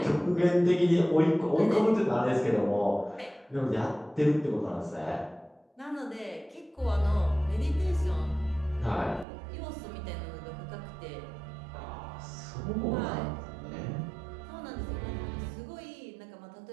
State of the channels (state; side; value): drops out; left; at 9.2 s